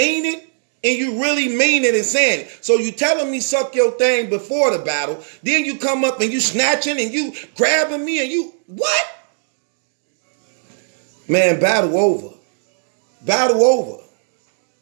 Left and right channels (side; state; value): left; silent; digital silence